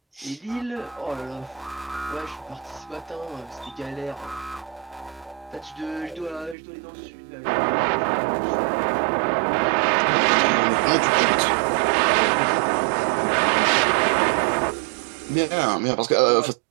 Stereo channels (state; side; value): drops out; left; at 6.6 s